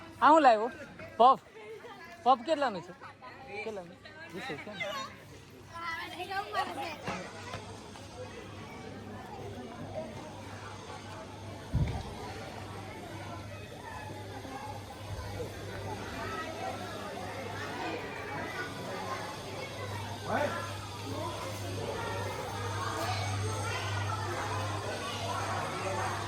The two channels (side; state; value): both; identical; correlation 1.00